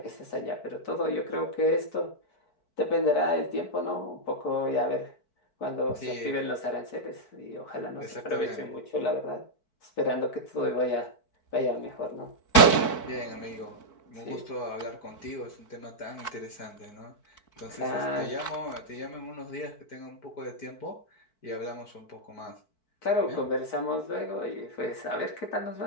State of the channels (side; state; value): right; late; 4.6 ms